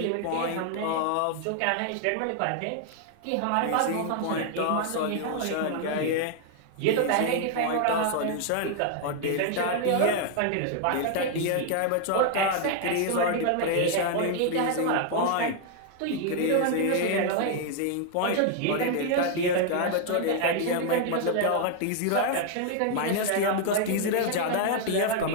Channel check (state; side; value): different; both; correlation 0.00